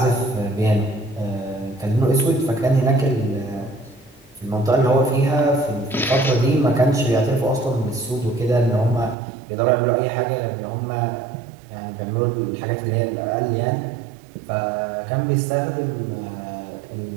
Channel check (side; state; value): left; drops out; at 9.2 s